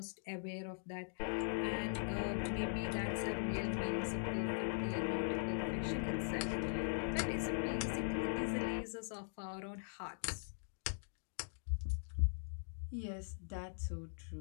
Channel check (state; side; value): silent; right; digital silence